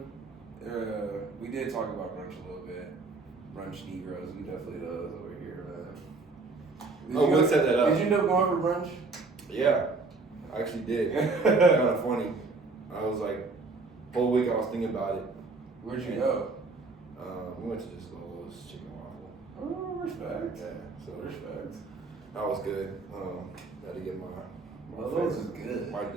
we did talk about brunch a little bit. Brunch Negroes, we definitely does over here, man. What set that up? Did you end up going for brunch? Yeah, I actually did. Kind of funny. I was like, whole week I was thinking about it. Where'd you go? We went to just Lolo's Chicken Waffle. Oh, respect. Yeah, so Respect. that was good. Got to get my Lolo's is good.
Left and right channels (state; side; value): quieter; left; 3.8 dB